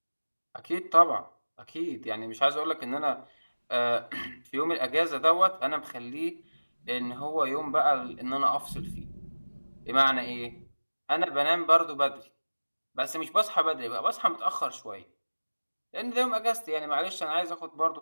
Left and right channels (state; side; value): inverted; both; correlation -1.00